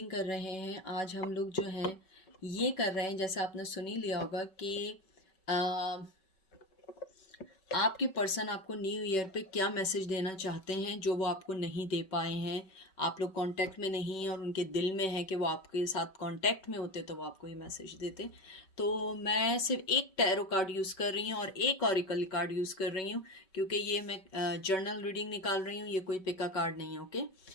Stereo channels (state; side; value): late; right; 5.3 ms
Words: कर रहे हैं। आज हम लोग जो है ये कर रहे हैं, जैसे आपने सुन ही लिया होगा कि आपके पर्सन आपको न्यू ईयर पे क्या मैसेज देना चाहते हैं जो वो आपको नहीं दे पाए हैं। आप लोग कांटेक्ट में नहीं हैं और उनके दिल में है कि वो आपके साथ कांटेक्ट में होते तो वो आपको ये मैसेज देते। तो मैं सिर्फ एक टैरो कार्ड यूज़ कर रही हूँ और एक ऑरिकल कार्ड यूज़ कर रही हूँ, क्योंकि ये मैं जर्नल रीडिंग निकाल रही हूँ, ये कोई पिका कार्ड नहीं है। ओके,